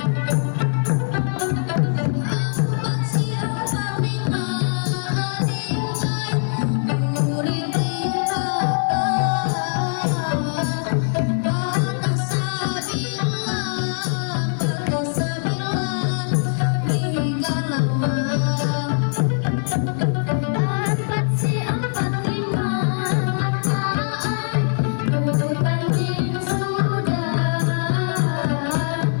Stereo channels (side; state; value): right; silent; digital silence